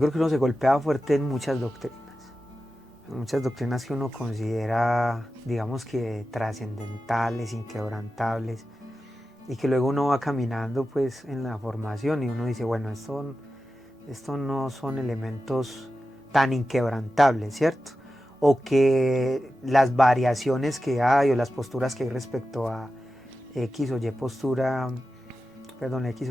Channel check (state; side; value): normal; both; correlation 0.92